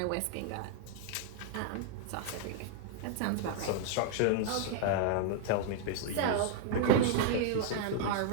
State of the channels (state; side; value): different; both; correlation 0.00